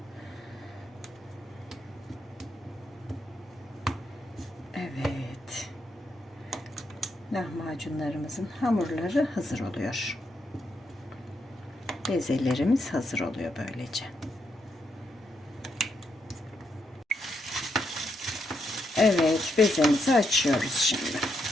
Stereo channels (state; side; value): normal; both; correlation 0.80